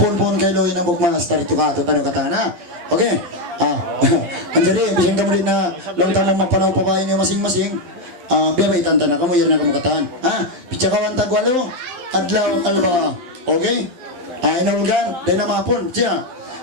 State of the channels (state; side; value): late; left; 12 ms